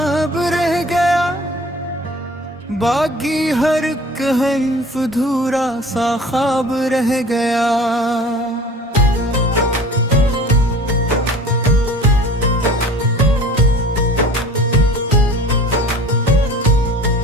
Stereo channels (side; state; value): both; normal; correlation 0.44